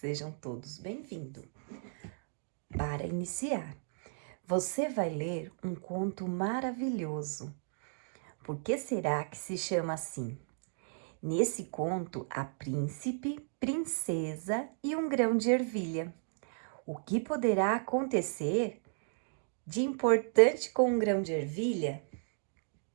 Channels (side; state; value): left; silent; digital silence